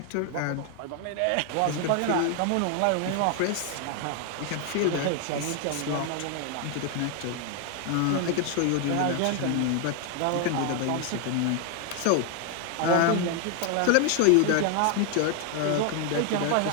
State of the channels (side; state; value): both; different; correlation 0.00